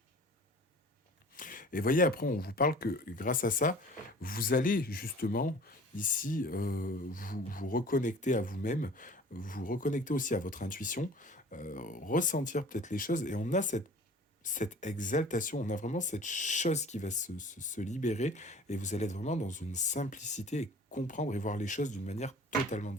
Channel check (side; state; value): both; normal; correlation 0.46